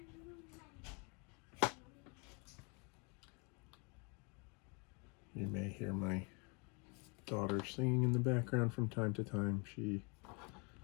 You may hear my daughter singing in the background from time to time. She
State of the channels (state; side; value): quieter; right; 32.7 dB